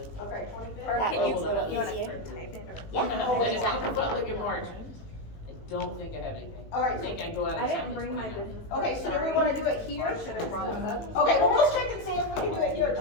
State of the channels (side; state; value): right; late; 19 ms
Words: Okay, 25th? Or That can you, will be you wanna easier. type it or? Yeah. I just look at public in March. I don't think I have anything. All right. I think I go out of I town. didn't the bring my 29th. business. Okay, so do we wanna do it here? Okay. Okay, well, we'll check and see if we can do it here at